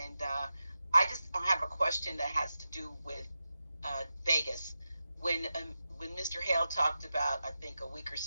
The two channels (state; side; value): inverted; both; correlation -0.92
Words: I just have a question that has to do with Vegas. When Mr. Hale talked about, I think a week or